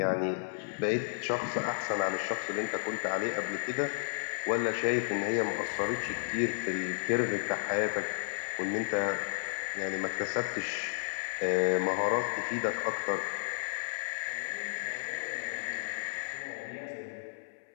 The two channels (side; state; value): right; silent; 56 dB below the other